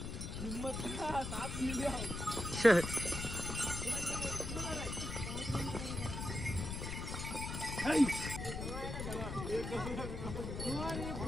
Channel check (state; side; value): noise; left; rumble, 5 dB below the sound